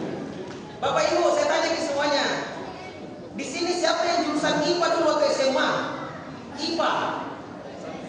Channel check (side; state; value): both; identical; correlation 1.00